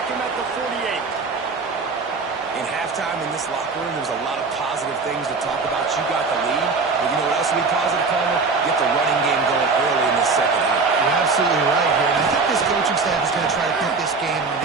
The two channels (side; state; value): left; quieter; 4.3 dB